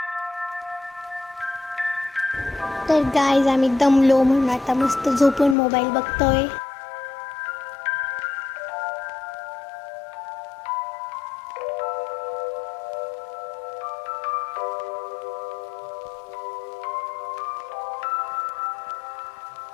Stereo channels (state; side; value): drops out; right; at 5.6 s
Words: तर गाईज आम्ही दमलो म्हणून आता मस्त झोपून मोबाईल बघतोय.